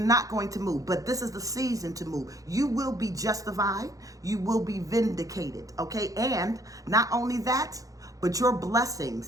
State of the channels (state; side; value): late; left; 0.17 ms